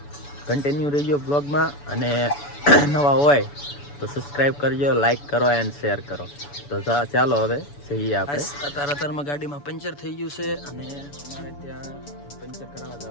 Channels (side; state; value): right; late; 7.0 ms